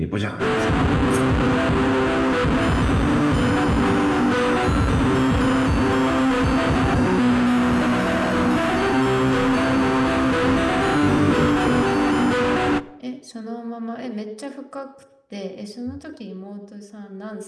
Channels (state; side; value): identical; both; correlation 1.00